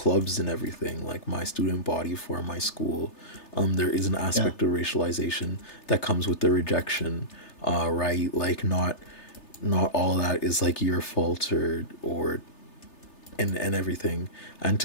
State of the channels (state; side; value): late; right; 3.3 ms